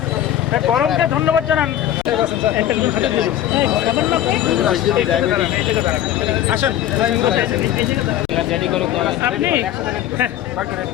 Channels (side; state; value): right; quieter; 11.9 dB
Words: গরমকে ধন্যবাদ জানান। আসেন